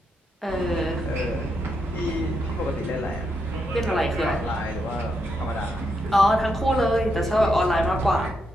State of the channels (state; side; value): normal; both; correlation 0.81